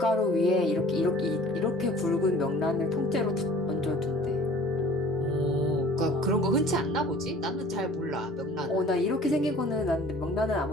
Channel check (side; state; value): both; normal; correlation 0.49